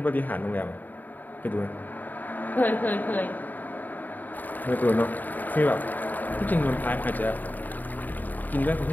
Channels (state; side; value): late; right; 0.086 ms